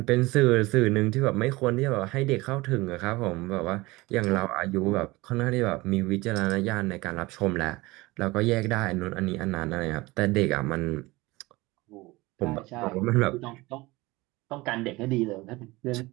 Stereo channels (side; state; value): left; quieter; 21.3 dB